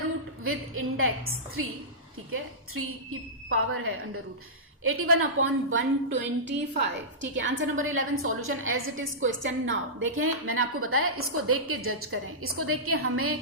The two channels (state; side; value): normal; both; correlation -0.16